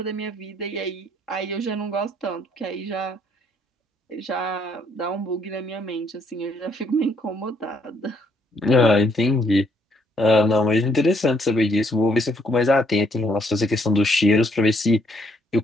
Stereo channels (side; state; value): both; normal; correlation 0.70